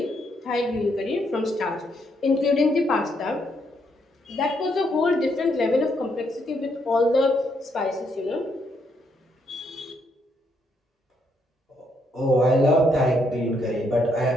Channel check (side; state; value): both; normal; correlation 0.75